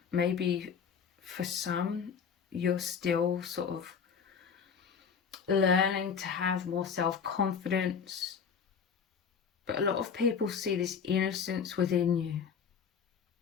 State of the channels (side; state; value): right; quieter; 6.6 dB